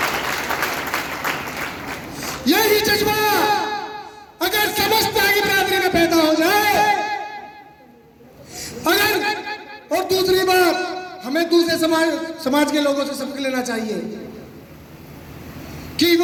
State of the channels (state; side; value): identical; both; correlation 1.00